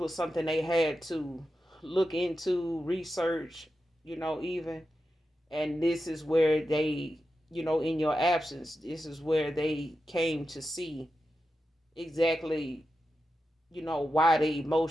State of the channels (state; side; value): normal; both; correlation 0.90